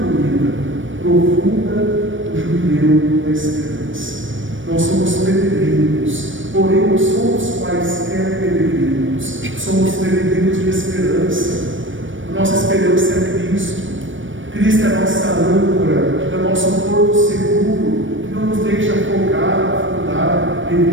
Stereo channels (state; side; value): late; left; 0.56 ms